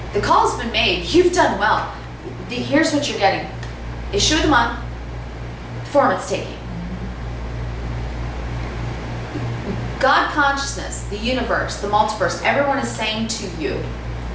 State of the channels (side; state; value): both; identical; correlation 1.00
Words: The call's been made. You've done well. Here's what you're getting. Issue of the month, form it's taking. God consciousness, the universe, the multiverse, everyone is saying to you,